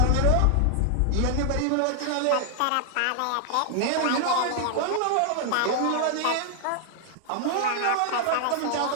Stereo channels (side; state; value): both; different; correlation 0.00